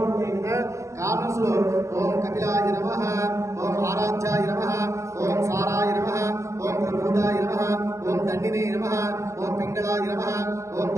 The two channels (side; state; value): left; late; 0.14 ms